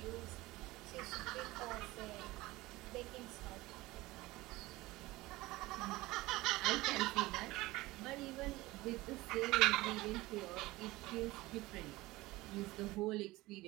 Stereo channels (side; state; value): left; quieter; 19.6 dB